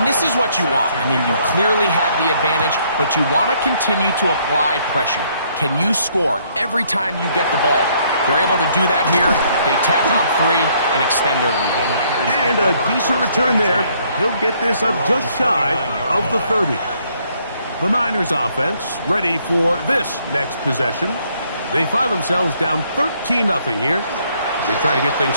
this is what you want. I mean, you clearly have the advantage, but you want to continue to apply pressure. Can you score every time you get the ball? They're able to do that here. They tack on 3 and extend their lead. And a decent return there. He'll get this up just shy of the 30. The Niners offense ready for this next possession. They find themselves down 13-0 here. They try to get things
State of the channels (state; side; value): inverted; both; correlation -0.67